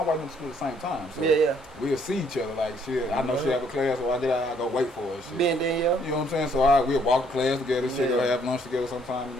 wife went to school at the same time. So we'll see each other. Like, shit, I know she have a class, so I go wait for her. Shit. Been there, you know what I'm saying? So we'll walk to class together. Shit, go have lunch together sometime. You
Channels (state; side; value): normal; both; correlation 0.66